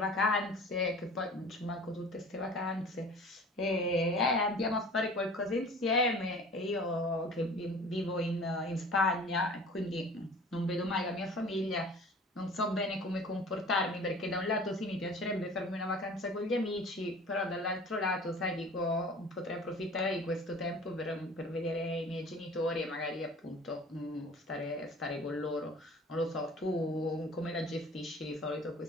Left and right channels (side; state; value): both; normal; correlation 0.44